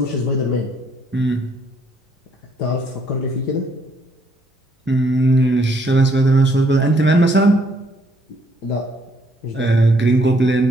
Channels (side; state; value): both; normal; correlation 0.68